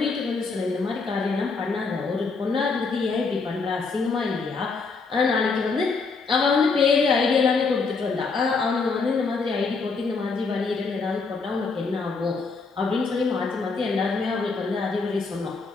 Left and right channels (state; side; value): quieter; right; 4.4 dB